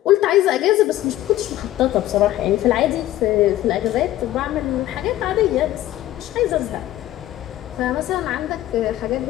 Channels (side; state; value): right; quieter; 14.4 dB